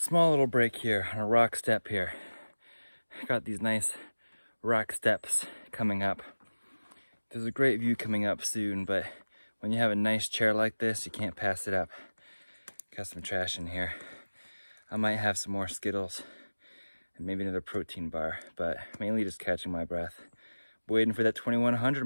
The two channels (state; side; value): inverted; both; correlation -1.00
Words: little break here on a rock step here. Got these nice rock steps coming up. There's a great view coming up soon, but when you have a nice chair like this, you can't pass it up. Got some trash in here. I might have some more Skittles and maybe another protein bar, but mainly just catching my breath. Waiting for that 2100